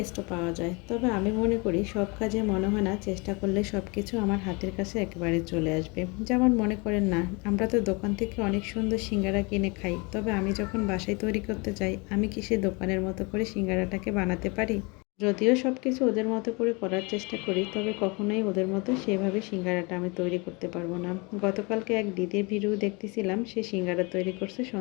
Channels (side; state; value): right; quieter; 28.9 dB